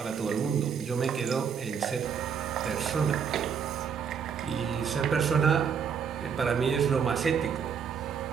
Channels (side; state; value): left; quieter; 6.9 dB